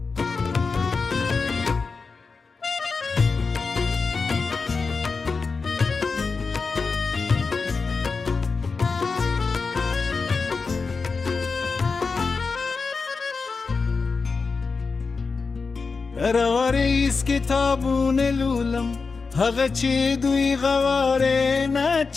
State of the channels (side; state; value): right; quieter; 4.6 dB